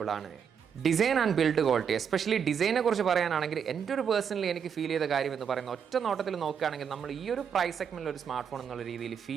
ആണ്. Design and build quality, especially ഡിസൈനെ കുറിച്ച് പറയാനാണെങ്കിൽ എൻ്റെ ഒരു പേഴ്സണലി എനിക്ക് ഫീൽ ചെയ്ത കാര്യം എന്ന് പറയുന്നത്, ഒറ്റ നോട്ടത്തിൽ നോക്കുകയാണെങ്കിൽ നമ്മൾ ഈ ഒരു പ്രൈസ് സെഗ്മെൻറ്റിൽ ഒരു സ്മാർട്ട് ഫോൺ എന്നുള്ള രീതിയിൽ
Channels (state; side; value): quieter; left; 7.4 dB